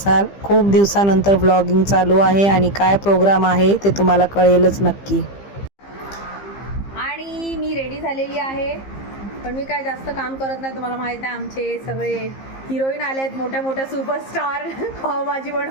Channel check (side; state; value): right; late; 15 ms